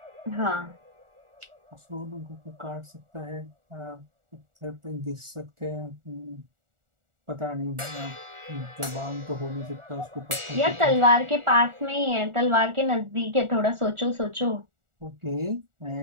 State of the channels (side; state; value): left; late; 1.4 ms